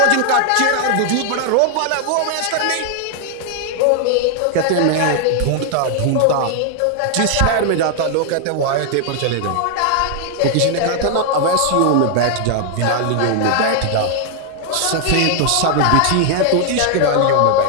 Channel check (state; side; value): different; both; correlation 0.00